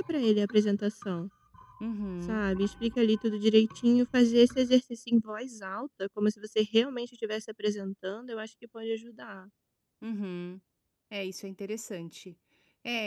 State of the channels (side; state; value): both; identical; correlation 1.00